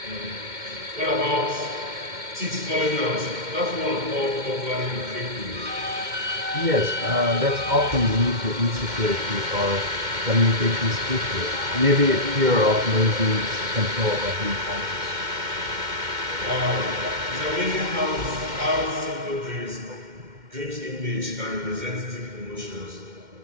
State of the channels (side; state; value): left; late; 2.1 ms